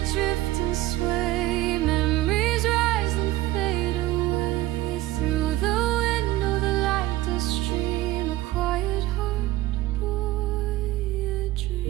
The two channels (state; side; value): quieter; left; 16.7 dB